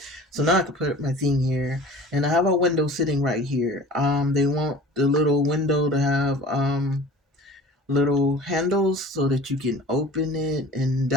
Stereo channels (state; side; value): normal; both; correlation 0.42